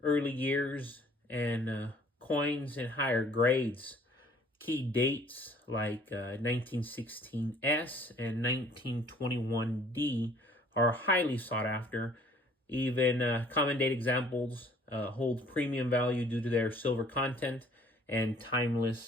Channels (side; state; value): both; normal; correlation 0.56